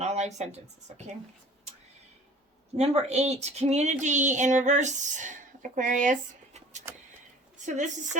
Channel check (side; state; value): both; normal; correlation 0.47